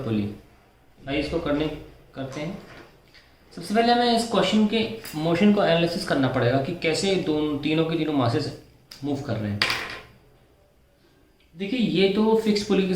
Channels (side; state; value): both; identical; correlation 1.00